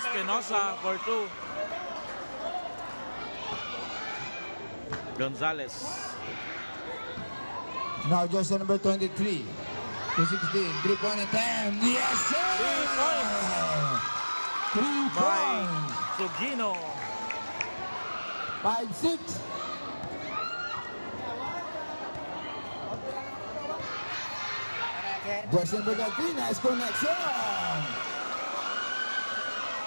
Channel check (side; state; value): both; inverted; correlation -1.00